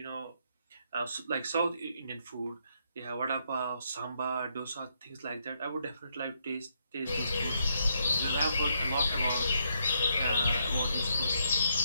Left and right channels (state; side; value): inverted; both; correlation -0.76